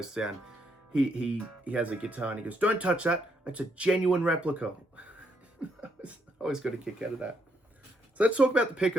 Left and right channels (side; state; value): both; normal; correlation 0.75